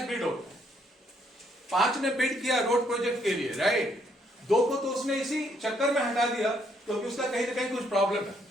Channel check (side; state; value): both; normal; correlation 0.70